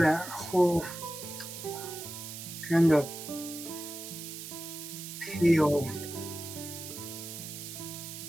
whole kind of pale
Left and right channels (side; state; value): right; noise; hiss, 9 dB below the sound